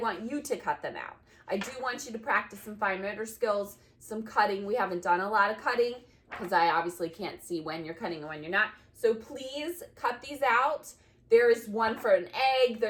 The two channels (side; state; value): both; identical; correlation 1.00